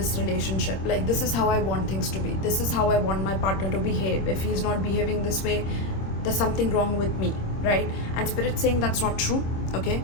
relationship. Like, this is how I want things to be, this is how I want my partner to behave. If he's not behaving this way, there's something wrong with me, right? And spirit's saying that's not true. Okay,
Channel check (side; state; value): right; late; 26 ms